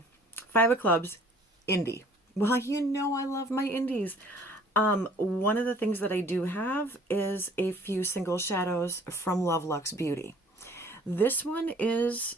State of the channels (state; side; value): normal; both; correlation 0.54